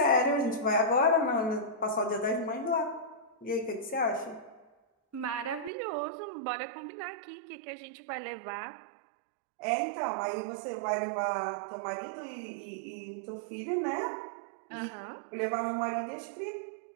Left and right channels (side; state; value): left; drops out; at 5.7 s